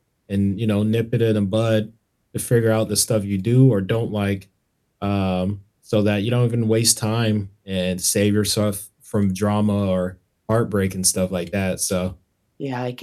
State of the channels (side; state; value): both; identical; correlation 1.00